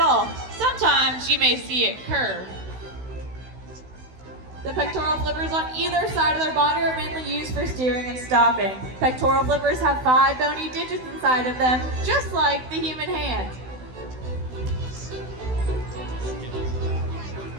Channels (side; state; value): left; late; 16 ms